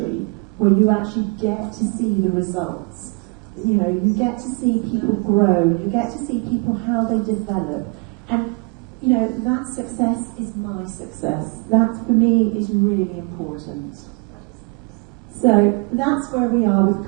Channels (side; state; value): left; quieter; 30.2 dB